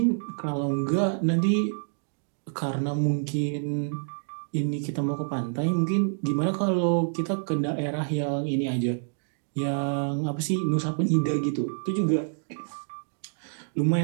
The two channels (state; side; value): silent; left; digital silence